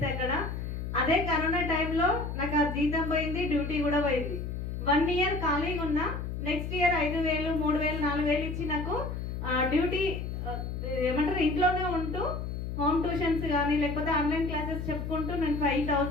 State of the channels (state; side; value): noise; left; hum, 5 dB below the sound